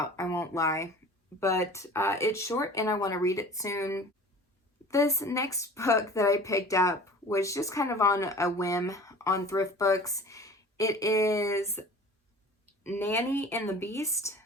I won't lie. But it's short and I want to read it soon. This next book that I picked up was just kind of on a whim on Thrift Books. It is Nanny and the Beast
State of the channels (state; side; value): normal; both; correlation 0.42